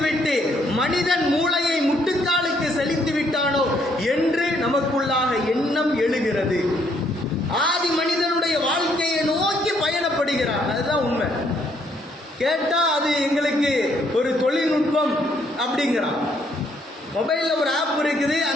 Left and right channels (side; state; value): both; normal; correlation 0.69